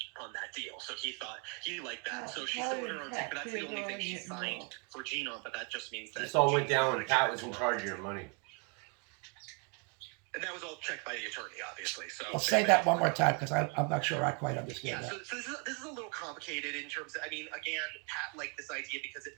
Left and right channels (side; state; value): left; quieter; 35.5 dB